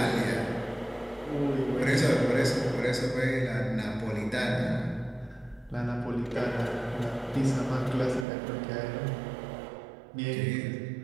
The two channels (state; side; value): drops out; left; at 8.2 s